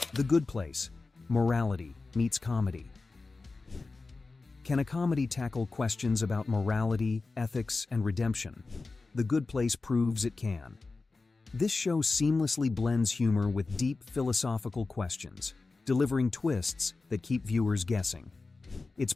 The Good Place: Morality meets comedy. Can a comedy tackle questions about morality, ethics, and redemption? The Good Place proves it can. This show seamlessly blends humor with deep philosophical questions, delivering twists that keep viewers guessing. Its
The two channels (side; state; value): right; quieter; 3.7 dB